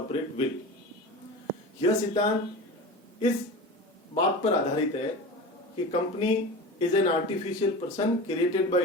विल। यह सिद्धांत इस बात पर आधारित है कि company is an artificial person created by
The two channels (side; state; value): both; normal; correlation 0.31